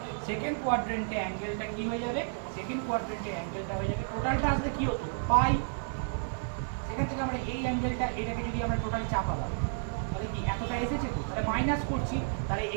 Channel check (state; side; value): silent; left; digital silence